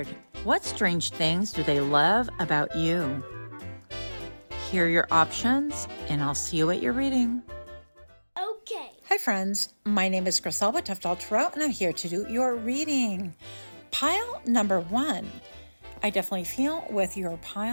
What strange things do they love about you? Here are your options, and I'll see you at your reading. Okay. Hi friends, my name is Griselda Toughdolltarot, and I'm here to do your reading. Pile number 1. I definitely feel with your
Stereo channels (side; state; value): both; inverted; correlation -1.00